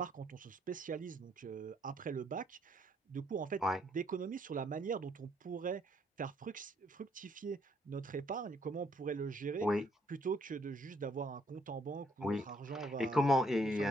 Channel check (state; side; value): normal; both; correlation 0.68